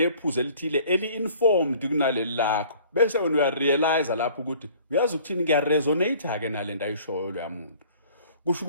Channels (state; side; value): inverted; both; correlation -0.52